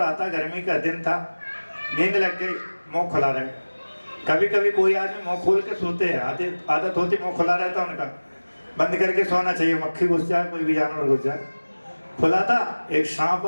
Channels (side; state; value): both; inverted; correlation -1.00